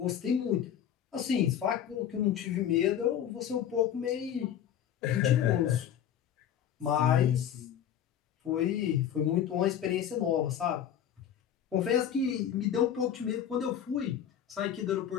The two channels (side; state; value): right; quieter; 9.7 dB